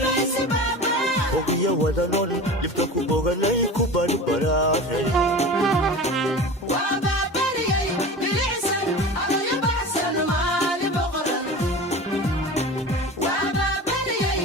ogiya wadanon dhibka ku boganay ku barbaraaray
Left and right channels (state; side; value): normal; both; correlation 0.33